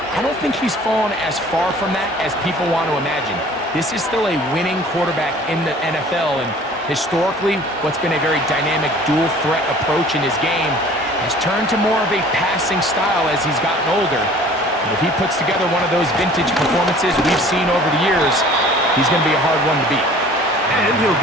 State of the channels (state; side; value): normal; both; correlation 0.49